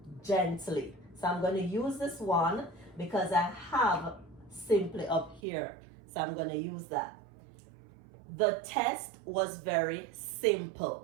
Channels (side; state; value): left; drops out; at 5.4 s